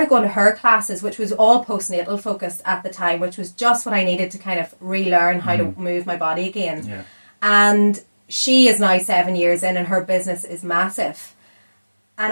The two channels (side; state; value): both; inverted; correlation -1.00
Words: going to her classes, which was all postnatal focused at the time, which was just what I needed to kind of relearn how to move my body again. Yeah. And she is now 7 years in and her business is massive. And